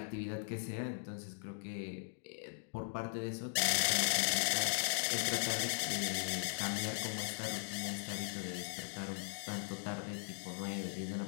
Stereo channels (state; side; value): silent; right; digital silence